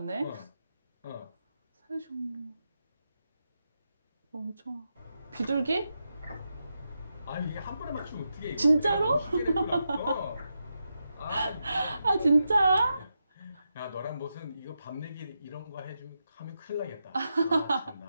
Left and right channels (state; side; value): inverted; both; correlation -0.86